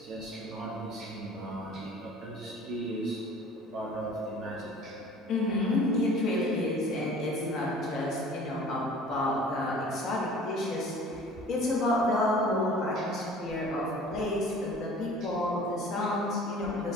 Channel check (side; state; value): both; normal; correlation 0.47